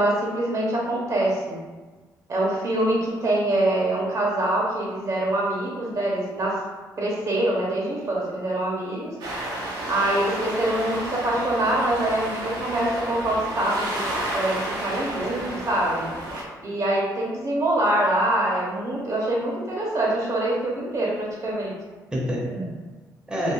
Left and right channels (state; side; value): normal; both; correlation 0.65